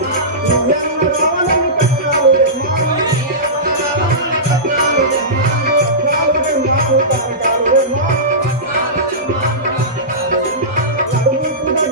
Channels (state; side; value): normal; both; correlation -0.18